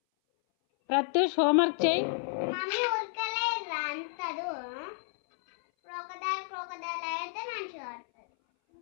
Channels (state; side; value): silent; right; 57 dB below the other